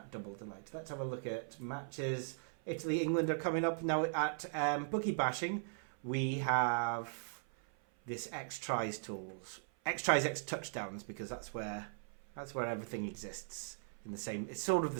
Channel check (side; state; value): left; silent; 52 dB below the other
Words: double delight. Let's have a look at matches. Italy, England are coming up now at bookie bashing. We have this X tries tools, X tries, X touchdowns, because that's where everything exists in the same. It's sort of the